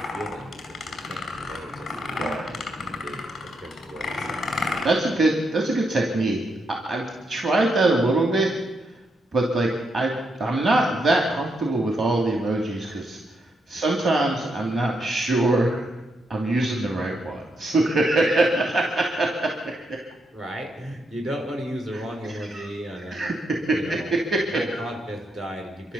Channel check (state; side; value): normal; both; correlation 0.80